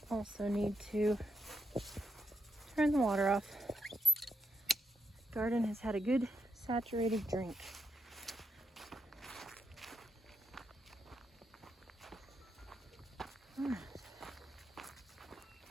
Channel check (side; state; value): both; normal; correlation 0.81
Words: Also need to turn the water off. Garden has had a good saturated drink. All right.